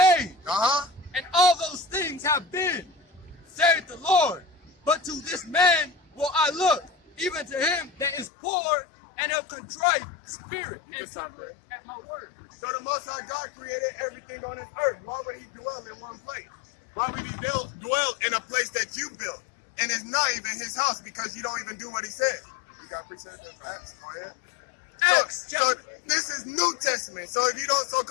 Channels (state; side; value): drops out; right; at 8.3 s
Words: and all those things have been, saith the Lord. But to this man will I look, even to him that is poor and of contrite spirit, and suffer at my word. So the Most High God created everything on this earth. Why would he dwell in one place? Why would he dwell in a place that you built? And it's not even his house because you don't even do what he said. You got precepts and facts? Go ahead. So this is New Testament. So if you don't